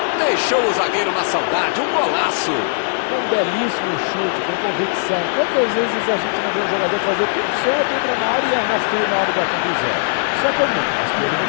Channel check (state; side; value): silent; right; digital silence